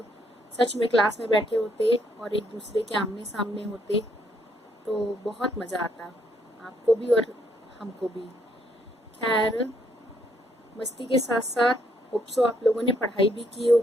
सच में क्लास में बैठे होते और एक दूसरे के आमने सामने होते, तो बहुत मज़ा आता, आपको भी और हमको भी। खैर, मस्ती के साथ साथ होप सो आप लोगों ने पढ़ाई भी की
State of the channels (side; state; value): both; normal; correlation 0.72